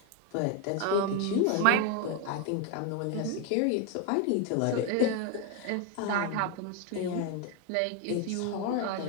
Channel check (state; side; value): different; both; correlation 0.01